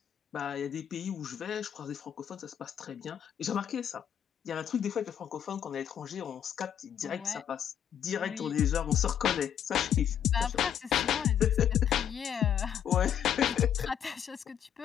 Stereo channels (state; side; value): quieter; right; 9.4 dB